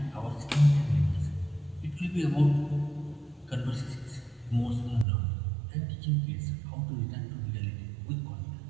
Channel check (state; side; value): drops out; left; at 5.1 s